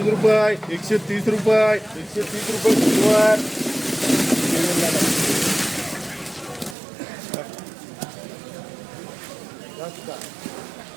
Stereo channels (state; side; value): drops out; left; at 6.8 s